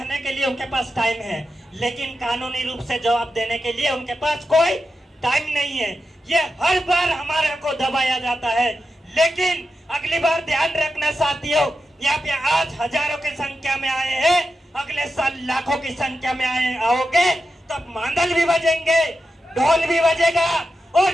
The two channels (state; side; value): normal; both; correlation 0.89